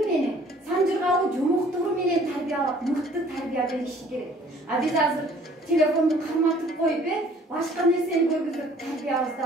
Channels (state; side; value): normal; both; correlation 0.55